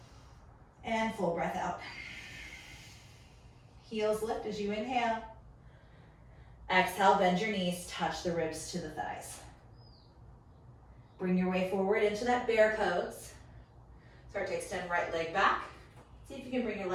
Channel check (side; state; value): both; identical; correlation 1.00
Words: And full breath out. Heels lift as you inhale. Exhale, bend your knees, touch the ribs to the thighs. Bring your way forward into that bear pose. Start to extend right leg back. See if you can bring your